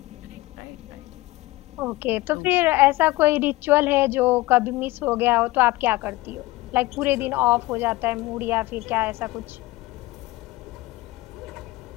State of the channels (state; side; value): quieter; right; 19.7 dB